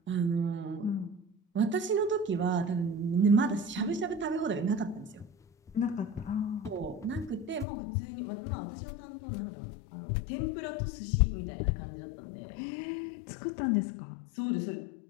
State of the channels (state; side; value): drops out; right; at 7.7 s